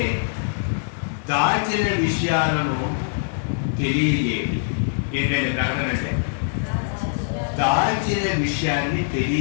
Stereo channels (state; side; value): silent; right; digital silence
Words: దాచిన విషయాలను తెలియజేయడం. ఏంటంటే ప్రకటన అంటే దాచిన విషయాన్ని